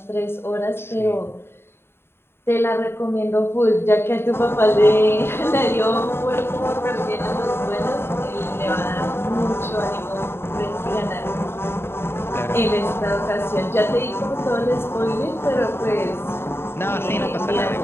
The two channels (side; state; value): right; late; 0.11 ms